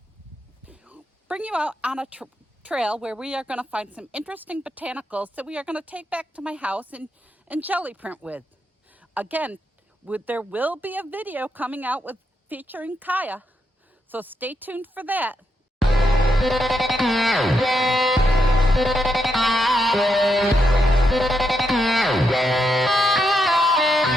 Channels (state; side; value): normal; both; correlation 0.82